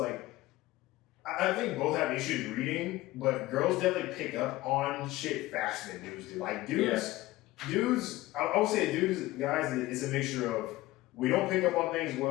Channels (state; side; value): quieter; right; 17.9 dB